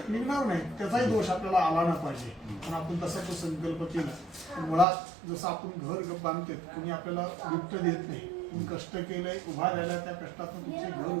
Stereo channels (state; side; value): drops out; left; at 4.9 s